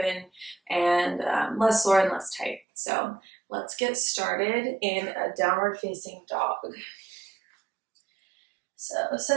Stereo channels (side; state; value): left; drops out; at 2.6 s